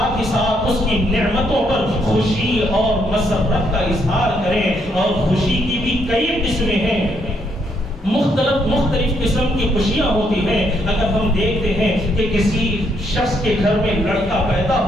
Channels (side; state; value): both; normal; correlation 0.74